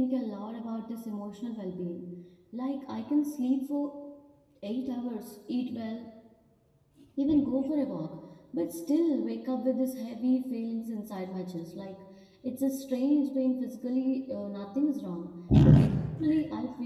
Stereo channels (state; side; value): identical; both; correlation 1.00